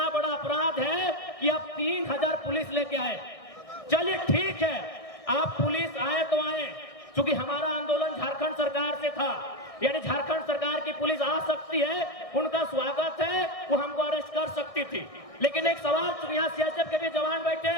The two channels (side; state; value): right; late; 1.6 ms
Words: बड़ा अपराध है कि आप 3000 पुलिस लेके आए। चलिए ठीक है, आप पुलिस आए तो आए, क्योंकि हमारा आंदोलन झारखंड सरकार से था। यानी झारखंड सरकार की पुलिस आ सकती है, उनका स्वागत है, वो हमको अरेस्ट कर सकती थी। लेकिन एक सवाल, यहाँ सीआरपीएफ के भी जवान बैठे